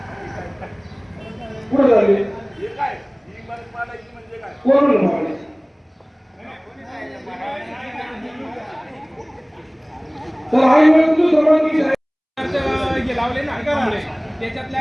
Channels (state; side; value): identical; both; correlation 1.00